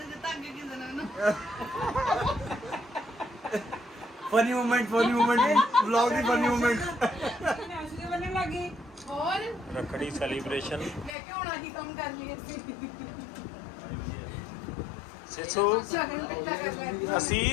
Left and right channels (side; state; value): right; drops out; at 11.2 s